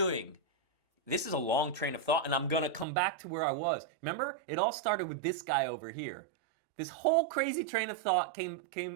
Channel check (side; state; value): left; drops out; at 2.9 s